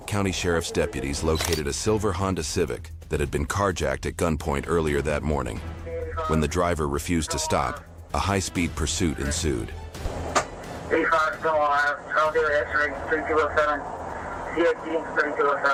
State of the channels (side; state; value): both; identical; correlation 1.00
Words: County Sheriff's deputies located a silver Honda Civic that had been carjacked at gunpoint earlier that morning. When the driver refused to stop, a high-speed pursuit ensued. 85 still alive. I'll do it. X-ray 3207. CXD